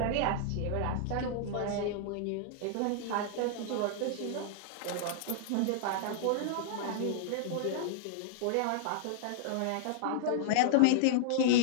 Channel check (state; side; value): different; both; correlation -0.01